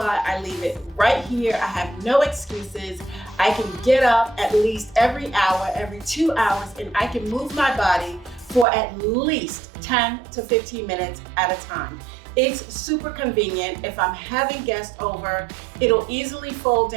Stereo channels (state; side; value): drops out; left; at 8.7 s